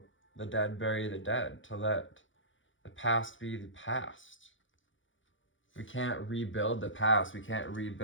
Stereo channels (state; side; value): late; right; 0.56 ms